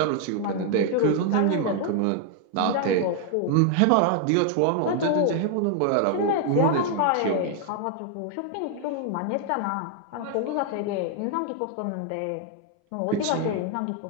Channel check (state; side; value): different; both; correlation 0.00